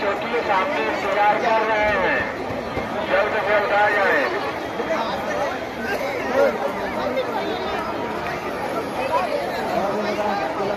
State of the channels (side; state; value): both; identical; correlation 1.00